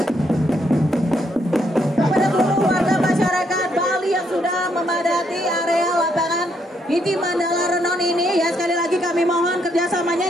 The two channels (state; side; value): normal; both; correlation 0.74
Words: kepada seluruh warga masyarakat Bali yang sudah memadati area lapangan Inti Mandala Renon ini ya, sekali lagi kami mohon kerjasamanya